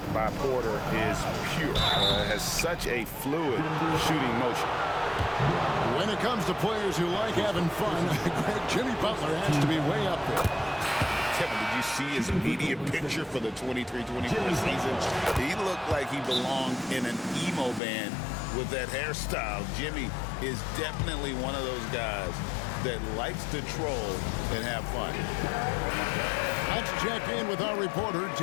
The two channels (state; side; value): drops out; right; at 17.8 s